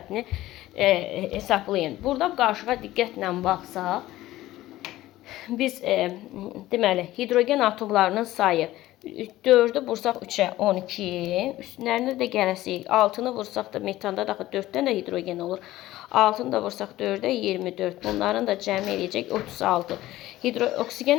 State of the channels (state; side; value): quieter; right; 15.9 dB